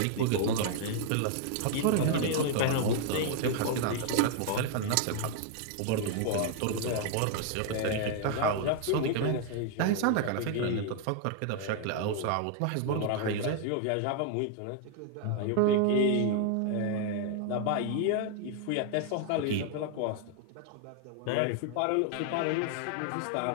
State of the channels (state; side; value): different; both; correlation 0.00